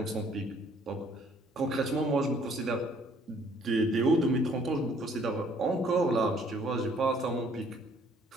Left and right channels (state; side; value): normal; both; correlation 0.61